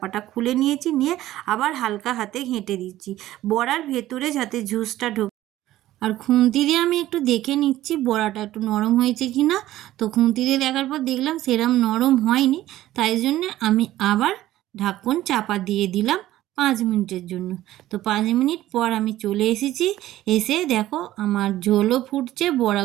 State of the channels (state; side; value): quieter; left; 14.7 dB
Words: খুলে নিয়েছি, নিয়ে আবার হালকা হাতে ঘেঁটে দিচ্ছি বড়ার ভেতরে যাতে জুসটা ঢোকে। আর খুন্তি দিয়ে আমি একটু দেখে নিচ্ছি বড়াটা একটু নরম হয়েছে কি না। তো খুন্তি দিয়ে দেখার পর দেখলাম সেরম নরম হয়নি, তাই জন্যে আমি আবার ঢাকন চাপা দিয়ে দিলাম 5 মিনিটের জন্য। তো 5 মিনিট পর আমি চলে এসেছি, এসে দেখো আমার ঝোলও ফুটছে,